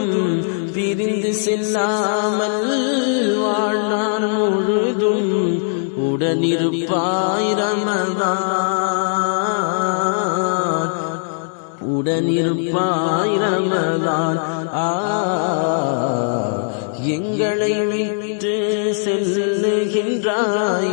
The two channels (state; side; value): silent; right; 65 dB below the other